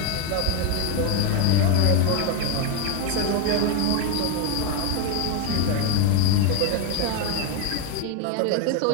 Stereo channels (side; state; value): both; different; correlation 0.01